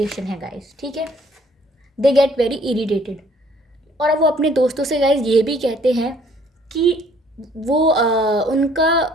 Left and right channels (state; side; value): normal; both; correlation 0.60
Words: है गाइस, ठीक है, दे गेट वेरी इरिटेटेड। और वो अपने दोस्तों से गाइस ये भी कहते हैं कि वो